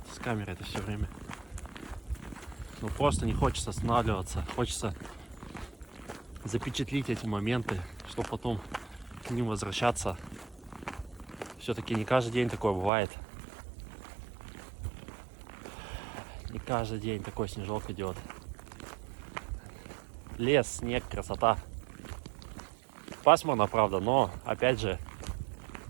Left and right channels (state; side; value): drops out; left; at 12.9 s